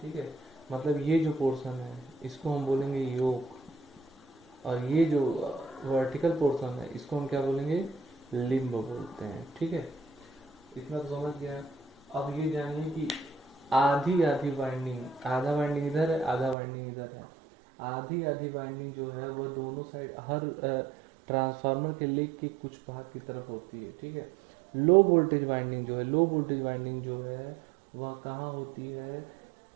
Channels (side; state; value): left; drops out; at 16.6 s